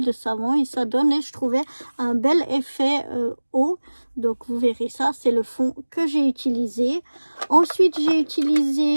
de savon, et ça donne, je trouvais, un bel effet eau. Donc vous verrez ça, c'est le fond que j'ai utilisé. Ensuite, j'ai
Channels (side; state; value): both; inverted; correlation -1.00